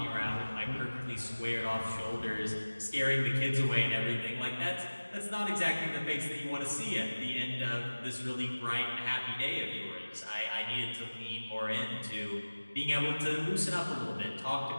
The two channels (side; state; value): both; inverted; correlation -1.00